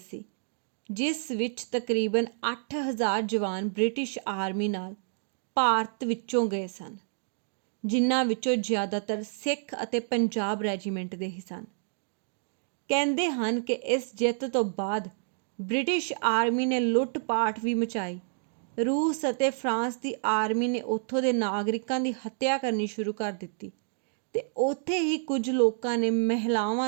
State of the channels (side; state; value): left; silent; digital silence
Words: ਜਿਸ ਵਿੱਚ ਤਕਰੀਬਨ 8,000 ਜਵਾਨ ਬ੍ਰਿਟਿਸ਼ ਆਰਮੀ ਨਾਲ ਭਾਰਤ ਵਿੱਚੋਂ ਗਏ ਸਨ, ਜਿਨ੍ਹਾਂ ਵਿੱਚੋਂ ਜ਼ਿਆਦਾਤਰ ਸਿੱਖ ਅਤੇ ਪੰਜਾਬ ਰੈਜੀਮੈਂਟ ਦੇ ਹੀ ਸਨ। ਕਹਿੰਦੇ ਹਨ ਕਿ ਇਸ ਜਿੱਤ ਤੋਂ ਬਾਅਦ ਬ੍ਰਿਟਿਸ਼ ਆਰਮੀ ਨੇ ਲੁੱਟ-ਪਾਟ ਵੀ ਮਚਾਈ। ਰੂਸ ਅਤੇ ਫਰਾਂਸ ਦੀ ਆਰਮੀ ਨੇ ਉੱਥੋਂ ਦੇ ਨਾਗਰਿਕਾਂ ਦੀ ਹੱਤਿਆ ਕਰਨੀ ਸ਼ੁਰੂ ਕਰ ਦਿੱਤੀ ਤੇ ਉੱਥੇ ਹੀ ਕੁਝ ਲੋਕਾਂ ਨੇ ਮਹਿਲਾਵਾਂ